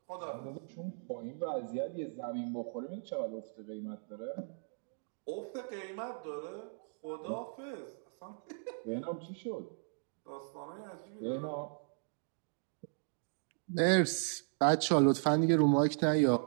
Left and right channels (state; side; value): silent; left; digital silence